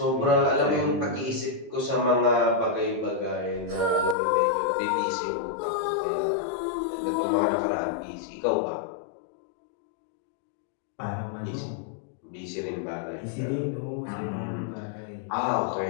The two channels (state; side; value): drops out; right; at 4.2 s